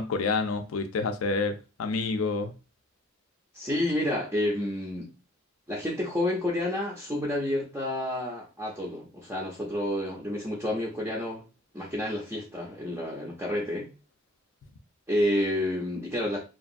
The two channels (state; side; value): normal; both; correlation 0.55